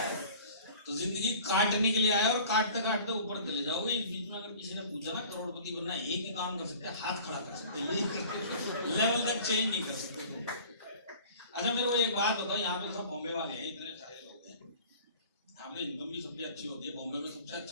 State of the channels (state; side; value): inverted; both; correlation -0.45